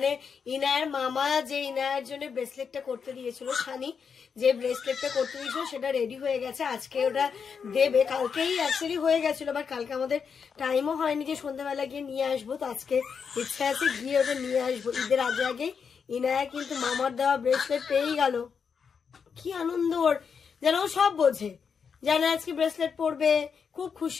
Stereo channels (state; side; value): quieter; right; 6.3 dB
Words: ইনায়ের মামা যে ইনায়ের জন্য ব্রেসলেটটা করতে দিয়েছিল, শানি যে ব্রেসলেটটা করতে দিয়েছিল সেটা রেডি হয়ে গেছে। আজকে ওটা দেবে, কালকেই অ্যাকচুয়ালি হয়ে গেছিল, বাট কালকে আমাদের টাইমও হয়নি যে সন্ধ্যাবেলা গিয়ে নিয়ে আসবো। তো আজকে ইচ্ছা আছে গিয়ে ওটা নিয়ে আসবো। ঈদের আগে আগে ইনায়া কিন্তু মামার দেওয়া ব্রেসলেট পেয়েই গেল। কি আনন্দ ওর, যেন ও সব বোঝে, জানে আজকে ব্রেসলেট পরবে, খুব